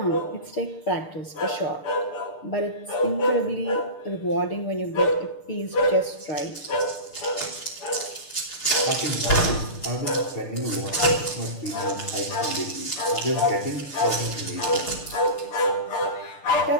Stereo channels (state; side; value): late; right; 6.7 ms